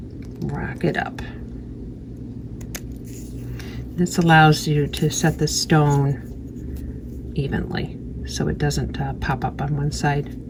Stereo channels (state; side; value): identical; both; correlation 1.00